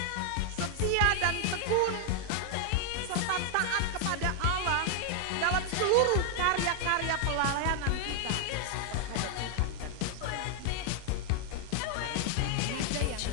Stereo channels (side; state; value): both; different; correlation 0.00